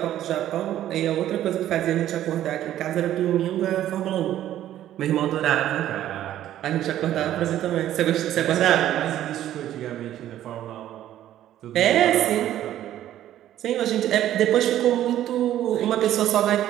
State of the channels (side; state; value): left; quieter; 12.4 dB